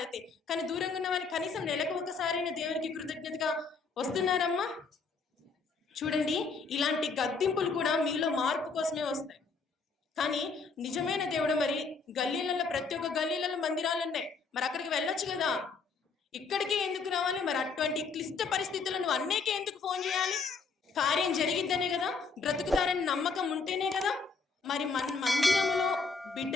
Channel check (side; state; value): right; quieter; 4.6 dB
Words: కానీ దూరంగా ఉన్న వాళ్ళు కనీసం నెలకు ఒక్కసారైన దేవునికి కృతజ్ఞతగా వస్తున్నారమ్మా? చూడండి, ఇలాంటి గద్దింపులు కూడా మీలో మార్పు కోసమే వస్తాయి. కానీ నిజమైన దేవుడు మరి గల్లీలలో, ప్రతి ఒక్క గల్లీలలో మందిరాలు ఉన్నాయి, మరి అక్కడికి వెళ్ళొచ్చు కదా. ఇక్కడికే ఎందుకు రావాలి? మరి అటువంటి క్లిష్ట పరిస్థితుల్లో నువ్వు అన్నేకే ఎందుకు ఫోన్ చేయాలి? కార్యం జరిగిద్దనే కదా, బ్రతుకుతారని నమ్మకం ఉంటేనే కదా. మరి మందిరంలో